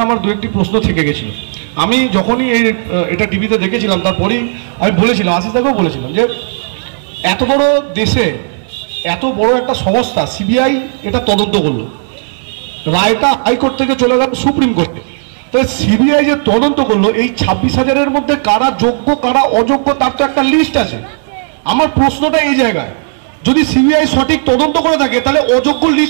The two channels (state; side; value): silent; left; digital silence